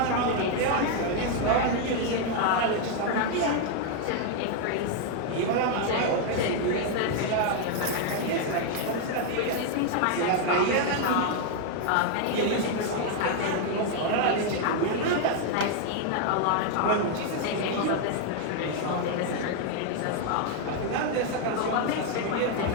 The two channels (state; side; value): different; both; correlation 0.00